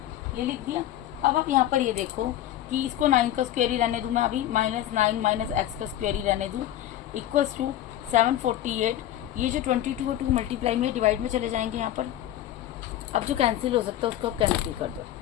ये लिख दिया। अब आप यहाँ पर ये देखो कि इसको 9 का स्क्वायर ही रहने दूँ मैं अभी, माइनस 9 माइनस एक्स का स्क्वायर ही रहने दूँ, इक्वल्स टू 748। ये जो 22 और 2 मल्टीप्लाई में डिवाइड में चले जाएंगे यहाँ पर। अब जो कैंसिल हो सकता है उसको आप कैंसिल कर दो।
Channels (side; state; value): right; quieter; 12.7 dB